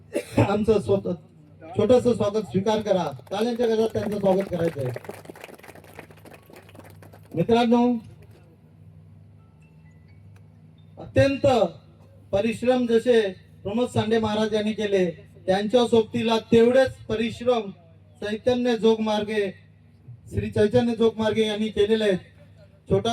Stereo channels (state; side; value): identical; both; correlation 1.00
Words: आमचं स्वतः छोटस स्वागत स्वीकार करा. टाळ्यांच्या गजरात त्यांचं स्वागत करायचं आहे. मित्रांनो अत्यंत परिश्रम जसे प्रमोद सांडे महाराज यांनी केले त्यांच्या सोबतीला तेवढेच परिश्रम चैतन्य जोगमार्गे श्री चैतन्य जोगमार्गे यांनी केलेले आहेत.